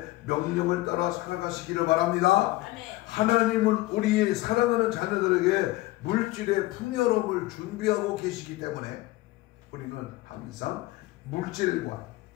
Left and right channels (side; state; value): right; quieter; 18.7 dB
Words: 명령을 따라 살아가시기를 바랍니다. 하나님은 우리의 사랑하는 자녀들에게 물질의 풍요로움을 준비하고 계시기 때문에 우리는 항상 물질과